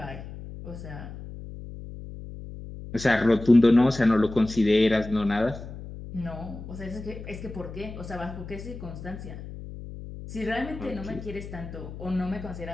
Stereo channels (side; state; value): left; noise; hum, 12 dB below the sound